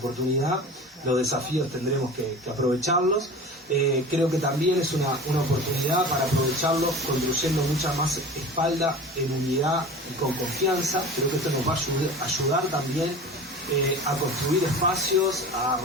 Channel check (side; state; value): both; normal; correlation 0.35